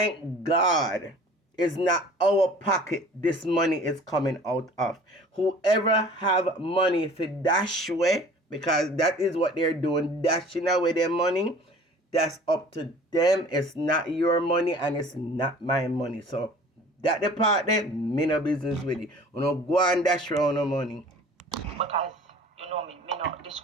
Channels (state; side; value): normal; both; correlation 0.47